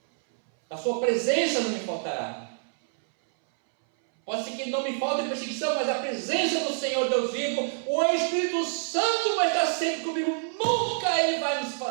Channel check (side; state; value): left; silent; 60 dB below the other